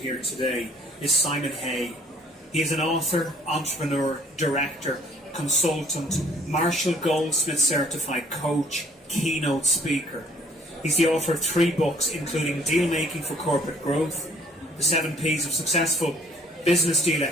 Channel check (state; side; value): normal; both; correlation 0.58